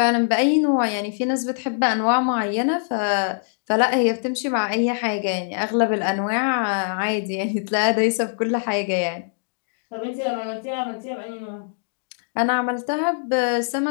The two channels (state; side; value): silent; right; digital silence